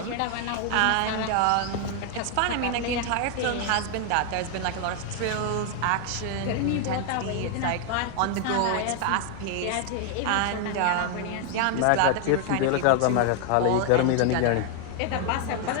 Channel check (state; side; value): different; both; correlation 0.00